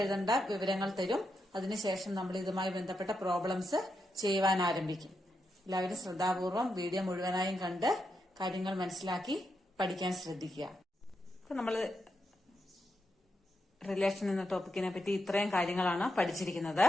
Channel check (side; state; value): both; normal; correlation 0.84